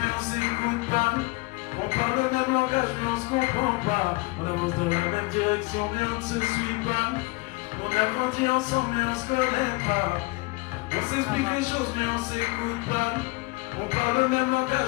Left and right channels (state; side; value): quieter; right; 24.3 dB